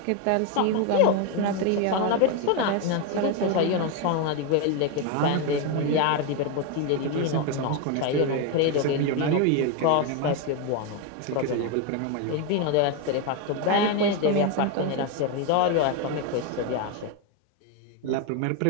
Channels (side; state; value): both; different; correlation 0.02